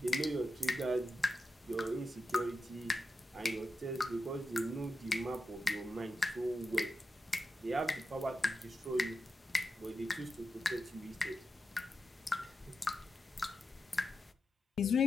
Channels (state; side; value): normal; both; correlation 0.89